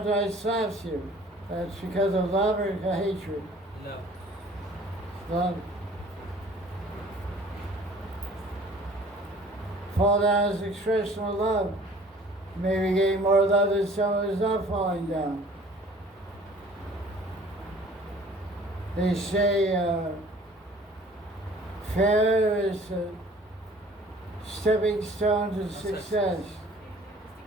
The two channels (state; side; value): normal; both; correlation 0.51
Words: slaps you. That's because of love or hatred? Love. Love. Fall down is expression of love. Maybe getting more love than someone who's not falling down. They say failure is a stepping stone to success.